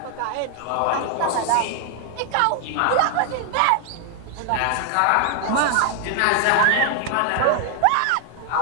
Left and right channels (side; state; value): both; different; correlation 0.00